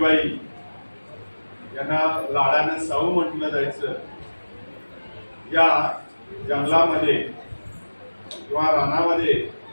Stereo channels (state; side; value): inverted; both; correlation -1.00